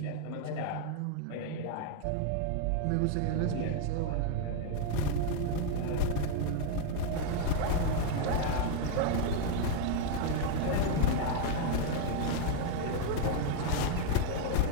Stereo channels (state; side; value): different; both; correlation 0.00